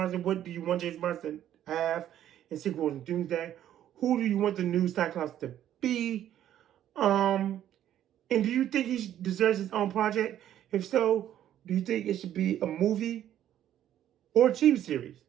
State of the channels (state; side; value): quieter; left; 11.3 dB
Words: What do you want James Marsden to have in Secret Wars of Doomsday? Who do you want the new Cyclops to be? And do you think he deserves his own project? If so, do you think it should be a movie or a TV series